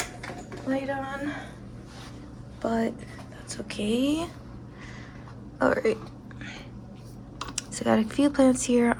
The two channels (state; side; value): identical; both; correlation 1.00